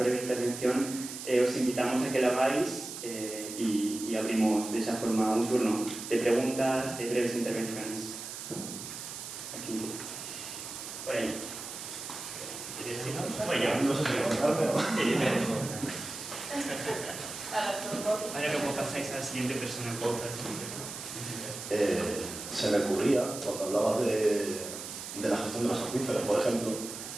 intervención, os invitamos a que la hagáis y abrimos de esa forma un turno de preguntas, de breves intervenciones. Aquí. Por ahí. ¿Quieres decirnos? No sé si contarme o... Ahora luego pasáis a la siguiente persona. Se me ocurría, cuando hablabas de la gestión de los acuíferos, por ejemplo,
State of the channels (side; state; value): right; noise; hiss, 9 dB below the sound